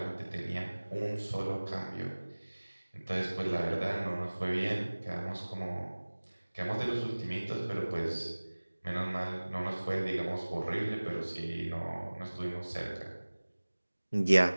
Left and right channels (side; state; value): both; inverted; correlation -1.00